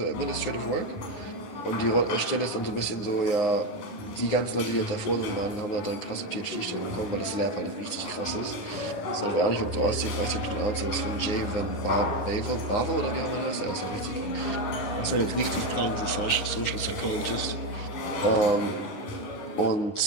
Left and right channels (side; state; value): right; late; 9.7 ms